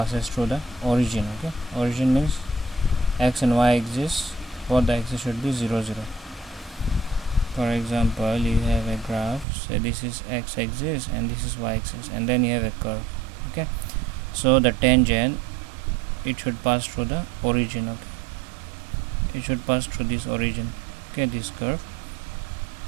through the origin. Okay, origin means x and y axis, both the axis should be 0 0. For example, you have a graph, say this is x axis and this is y axis, and then you have a curve. Okay, so the tangent it should pass through the origin. Okay, it should pass through this origin. Okay, this curve,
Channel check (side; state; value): left; drops out; at 9.5 s